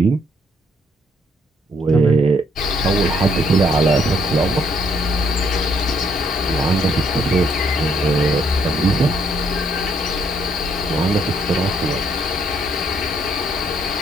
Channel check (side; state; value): both; normal; correlation 0.69